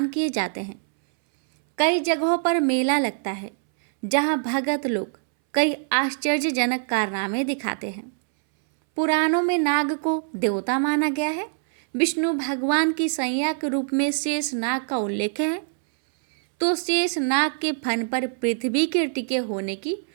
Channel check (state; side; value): silent; left; 63 dB below the other